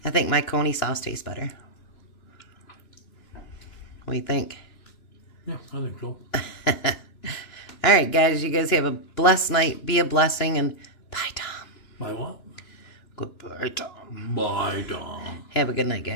I think my coney sauce tastes better. What do you think? Yeah, I think so. All right, guys, you guys have a blessed night. Be a blessing, and bye, Tom. Bye what? Goodbye, Tom. Bye, Tom. Have a good night,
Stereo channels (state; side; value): late; right; 2.9 ms